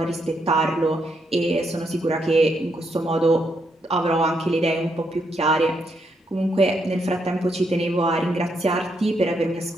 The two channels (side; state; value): both; normal; correlation 0.78